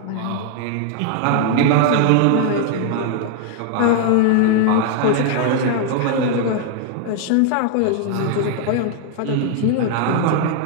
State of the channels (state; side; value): different; both; correlation 0.00